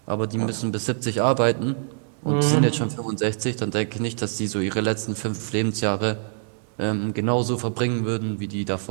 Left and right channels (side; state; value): left; silent; digital silence